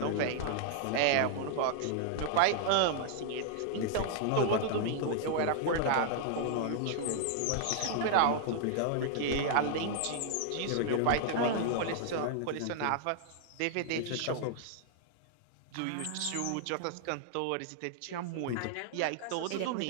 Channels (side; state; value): both; different; correlation -0.01